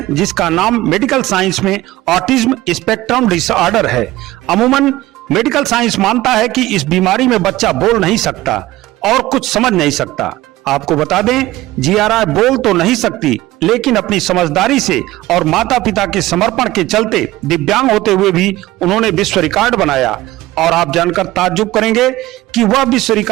जिसका नाम मेडिकल साइंस में ऑटिज्म स्पेक्ट्रम डिसऑर्डर है। अमूमन मेडिकल साइंस मानता है कि इस बीमारी में बच्चा बोल नहीं सकता और कुछ समझ नहीं सकता। आपको बता दें, जिया राय बोल तो नहीं सकती, लेकिन अपनी समझदारी से और माता पिता के समर्पण के चलते दिव्यांग होते हुए भी उन्होंने विश्व रिकॉर्ड बनाया। और आप जानकर ताज्जुब करेंगे कि वह विश्व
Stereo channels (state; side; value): quieter; left; 17.2 dB